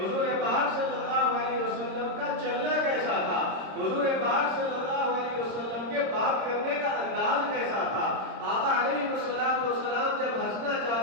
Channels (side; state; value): left; late; 26 ms